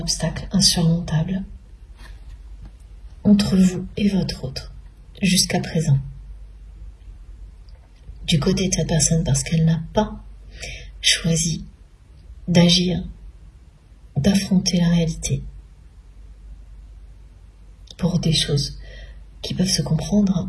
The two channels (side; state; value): both; identical; correlation 1.00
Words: insurmontable entre vous et votre autre, jusqu'à présent. Du côté de cette personne, parce qu'elle n'a pas choisi d'agir, d'affronter la réalité pour des choses qui peuvent se comprendre